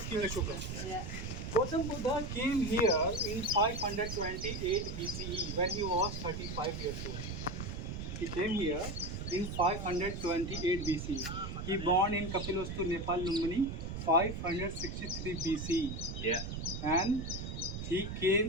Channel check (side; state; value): right; noise; rumble, 6 dB below the sound